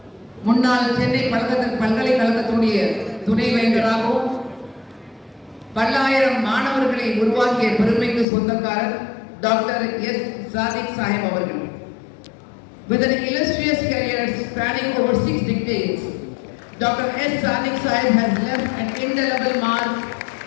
முன்னாள் சென்னை பல்கலைக்கழகத்துடைய துணைவேந்தராகவும் பல்லாயிரம் மாணவர்களை உருவாக்கிய பெருமைக்கு சொந்தக்காரர் டாக்டர் எஸ் சாதிக் சாஹிப் அவர்கள். With an illustrious career spanning over 6 decades, Dr. S. Sadiq Sahib has left an indelible mark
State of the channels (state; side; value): drops out; right; at 8.2 s